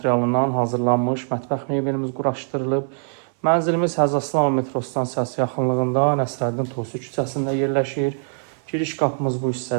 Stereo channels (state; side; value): silent; left; 63 dB below the other